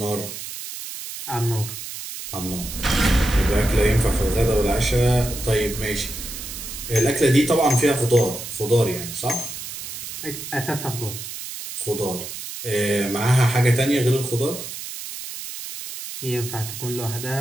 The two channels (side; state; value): right; noise; hiss, 9 dB below the sound